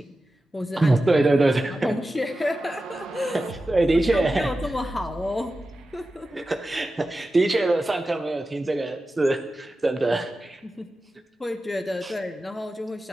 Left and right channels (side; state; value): both; normal; correlation 0.93